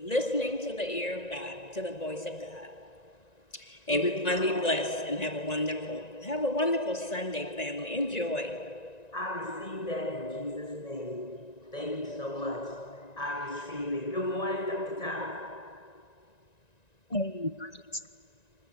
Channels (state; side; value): late; right; 1.9 ms